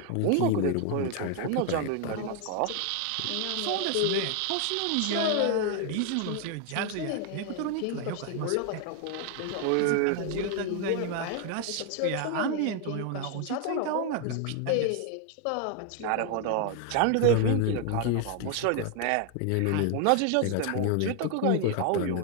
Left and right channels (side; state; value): both; different; correlation 0.01